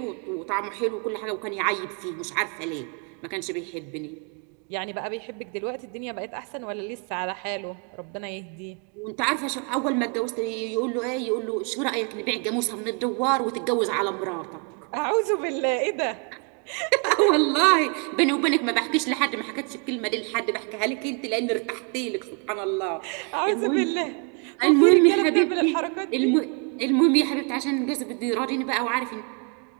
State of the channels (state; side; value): quieter; left; 36.6 dB